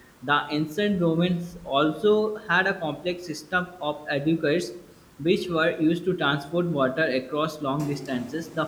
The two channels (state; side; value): identical; both; correlation 1.00